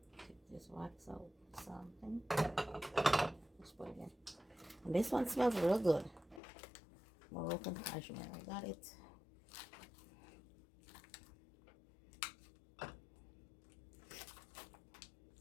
Take this wax out something. Just put it in. And this one smells real good. Moroccan cashmere. I got it.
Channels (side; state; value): right; drops out; at 6.4 s